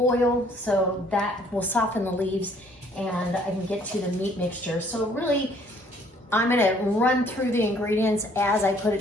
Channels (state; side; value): normal; both; correlation 0.61